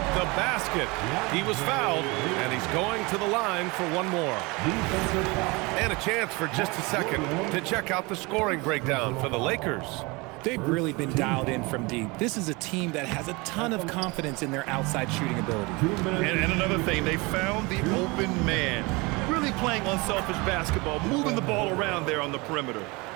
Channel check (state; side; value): quieter; left; 25.8 dB